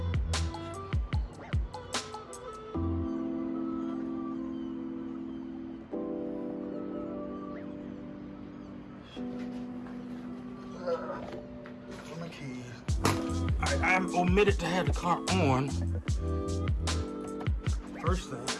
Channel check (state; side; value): identical; both; correlation 1.00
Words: My keys. Alright, I omitted to have the car on. First thing.